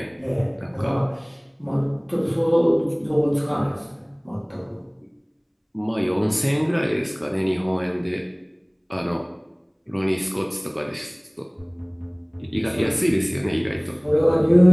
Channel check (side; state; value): both; identical; correlation 1.00